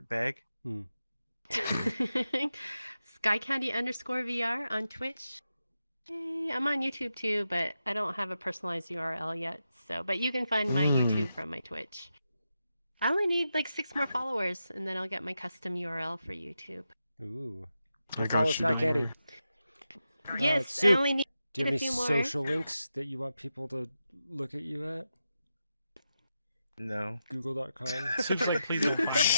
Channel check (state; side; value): inverted; both; correlation -0.88